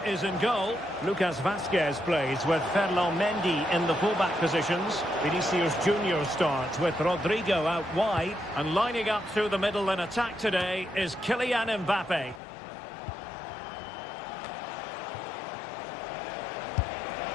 is in goal. Lucas Vazquez plays with Ferland Mendy in the fullback positions. Vinicius Junior starts with Rodrigo out wide. And lining up through the middle in attack today is Kylian Mbappe.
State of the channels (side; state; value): right; drops out; at 12.4 s